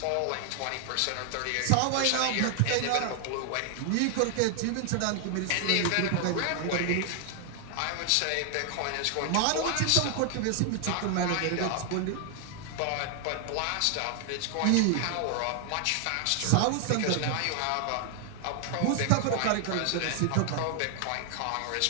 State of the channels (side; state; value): both; different; correlation 0.00